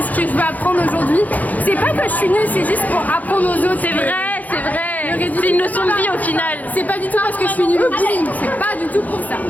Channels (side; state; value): right; late; 0.079 ms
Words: ce que je vais apprendre aujourd'hui. C'est pas que je suis nulle, c'est juste pour apprendre aux autres. C'est vrai, c'est vrai. Le ridicule, C'est une leçon de vie au final. C'est pas du tout parce que je suis nulle au bowling, c'est pas du tout pour ça.